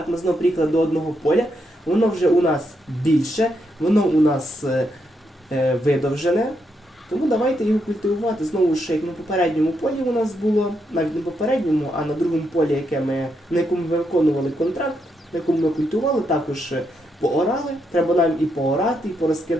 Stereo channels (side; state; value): both; normal; correlation 0.80